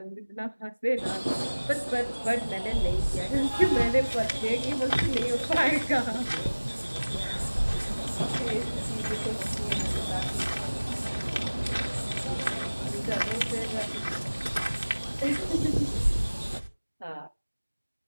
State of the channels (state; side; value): inverted; both; correlation -1.00